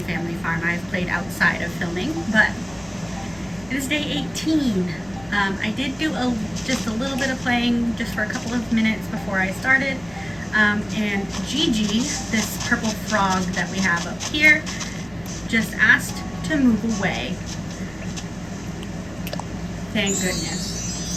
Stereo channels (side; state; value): left; noise; rumble, 22 dB below the sound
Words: Family Farm. I've played outside of filming, but it is day 18. I did do just a little bit of playing just for a couple of minutes before I started. And Gigi, this purple frog that we have up here, just asked to move away. Thank goodness.